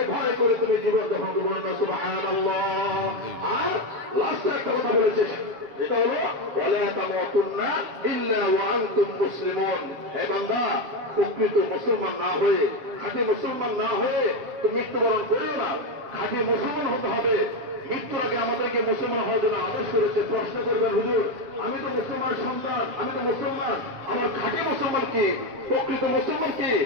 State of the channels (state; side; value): late; left; 7.1 ms